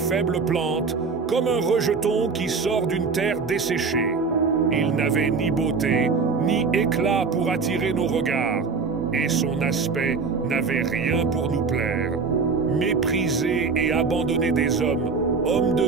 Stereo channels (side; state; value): left; quieter; 4.8 dB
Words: plante, comme un rejeton qui sort d'une terre desséchée. Il n'avait ni beauté, ni éclat pour attirer nos regards, et son aspect n'avait rien pour nous plaire. Méprisé et abandonné des hommes, homme